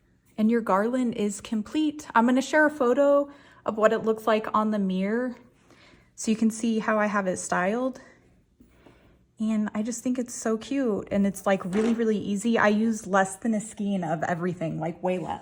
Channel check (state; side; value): identical; both; correlation 1.00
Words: And your garland is complete. I'm going to share a photo of what it looks like on the mirror so you can see how I have it styled. And I just think it's so cute, and it's like really, really easy. I use less than a skein of everything, like way